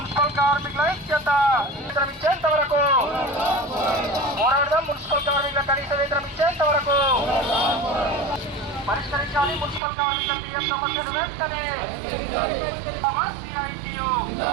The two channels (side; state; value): left; drops out; at 9.8 s